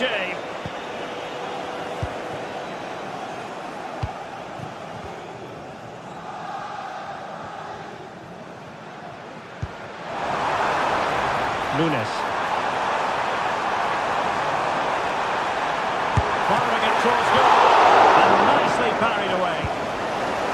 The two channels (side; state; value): both; identical; correlation 1.00